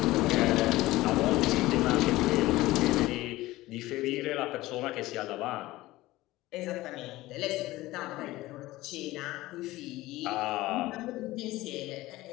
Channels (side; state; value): right; quieter; 18.0 dB